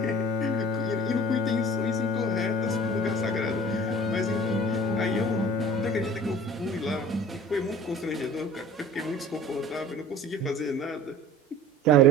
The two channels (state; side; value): normal; both; correlation 0.44